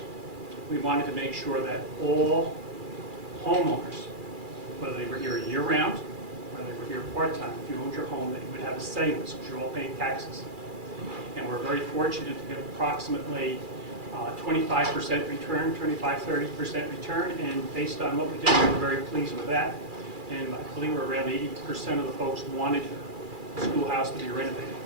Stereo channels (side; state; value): left; late; 2.4 ms